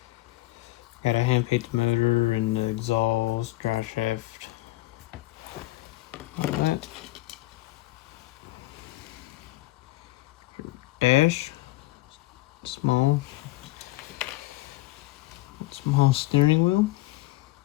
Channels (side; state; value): right; quieter; 18.8 dB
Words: Gotta hand paint the motor and the exhaust, drive shaft, all that. Dash, small steering wheel,